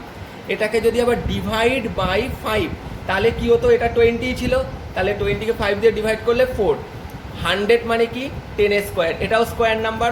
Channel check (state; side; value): identical; both; correlation 1.00